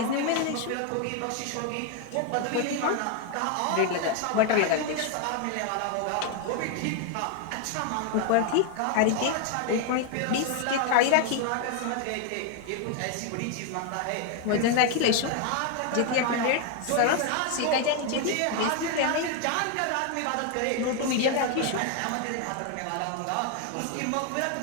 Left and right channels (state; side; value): different; both; correlation 0.01